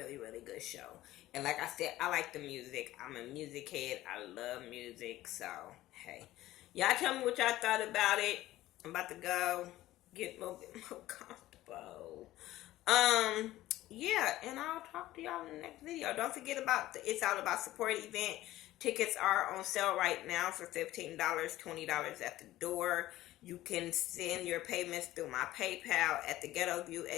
really good show. And like I said, I like the music. I'm a music head. I love music. So, hey. Y'all tell me what y'all thought about it. I'm about to go get a little bit more comfortable. Yeah, and I'll talk to y'all in the next video. Don't forget about the It's All About Support event. Tickets are on sale right now for $15, $20 at the door. You can send your payments through my PayPal at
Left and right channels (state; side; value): quieter; right; 15.6 dB